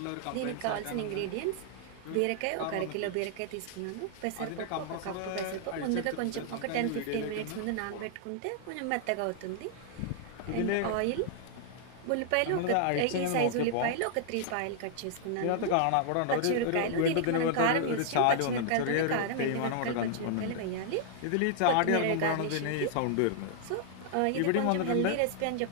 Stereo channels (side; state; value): both; different; correlation -0.01